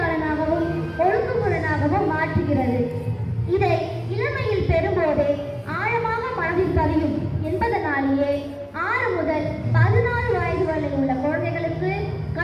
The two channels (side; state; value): both; identical; correlation 1.00